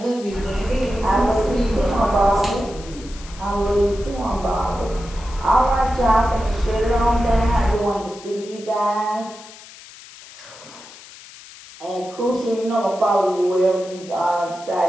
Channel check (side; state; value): left; noise; hiss, 19 dB below the sound